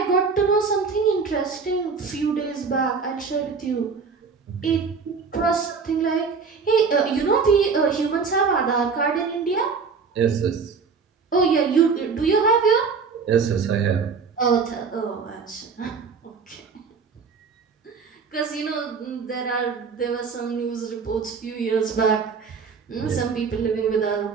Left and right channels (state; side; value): quieter; left; 5.3 dB